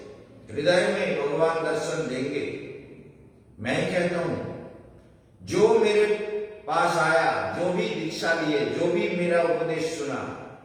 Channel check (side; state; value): both; identical; correlation 1.00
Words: हृदय में भगवान दर्शन देंगे। मैं कहता हूं जो मेरे पास आया, जो भी दीक्षा लिए, जो भी मेरा उपदेश सुना,